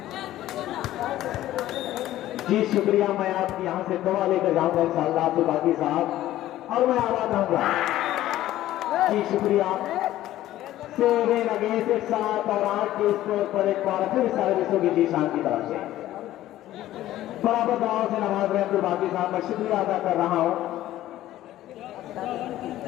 जी शुक्रिया। मैं आपकी यहां से दवा लेकर जाऊंगा इंशाअल्लाह अब्दुल बाकी साहब और मैं आवाज आऊंगा। जी शुक्रिया। 7 अगेंस्ट 7 और 8 के स्कोर पर एक बार फिर सर्विस होगी जीशान की तरफ से। बराबर दाव से नवाज रहे अब्दुल बाकी साहब, मैं शुक्रिया अदा कर रहा हूं।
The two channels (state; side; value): quieter; right; 14.2 dB